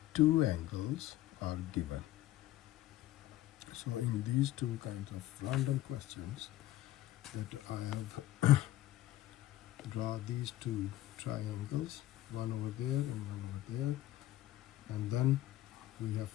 two angles are given. So in these two kinds of random questions that I have draw these two triangles, one over there and one over there, and then we have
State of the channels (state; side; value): quieter; right; 14.9 dB